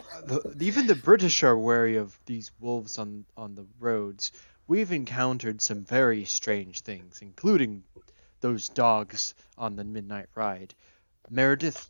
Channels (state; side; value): inverted; both; correlation -1.00